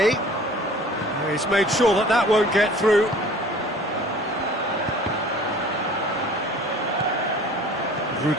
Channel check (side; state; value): both; normal; correlation 0.47